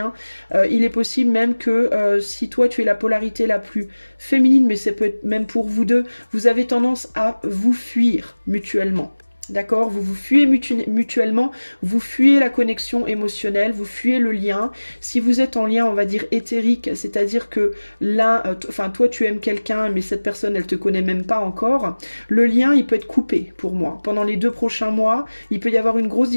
Il est possible même que si toi, tu es la polarité la plus féminine, mais ça peut être même pour vous deux, vous avez tendance à vous fuir mutuellement. D'accord? Vous vous fuyez mutuellement, vous fuyez la connexion émotionnelle, vous fuyez le lien. Si vous êtes en lien, on va dire éthérique, c'est-à-dire que l'un, enfin toi tu aimes quelqu'un, mais cette personne elle te connaît même pas encore, le lien il peut être coupé pour moi. Pendant les 2 prochains mois, il peut y avoir une grosse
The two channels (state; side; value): inverted; both; correlation -1.00